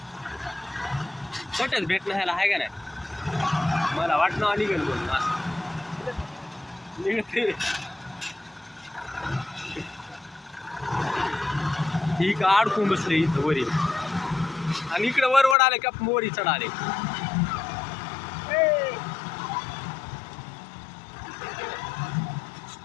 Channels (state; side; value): drops out; right; at 15.6 s